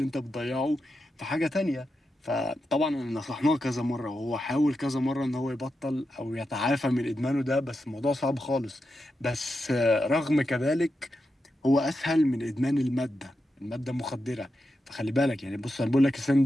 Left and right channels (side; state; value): both; normal; correlation 0.88